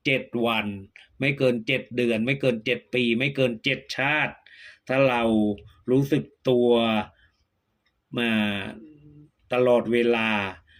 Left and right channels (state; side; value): identical; both; correlation 1.00